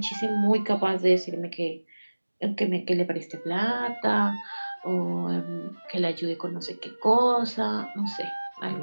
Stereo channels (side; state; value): both; inverted; correlation -1.00